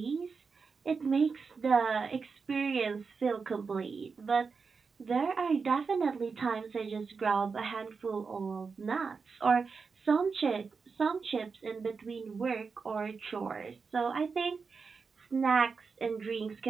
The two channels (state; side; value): quieter; left; 5.1 dB